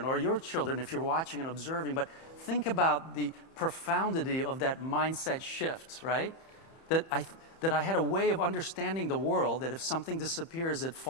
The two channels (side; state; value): right; late; 30 ms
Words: or your children if you're watching and observing. But think about the profundity of that mindset shift, right? That I had a way of understanding the world, that if something disappears, it